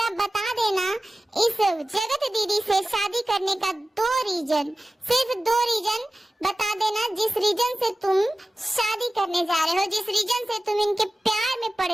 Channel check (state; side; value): normal; both; correlation 0.96